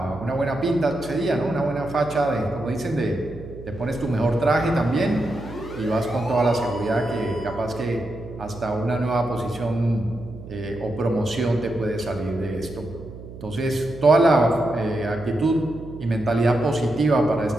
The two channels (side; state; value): right; noise; hum, 14 dB below the sound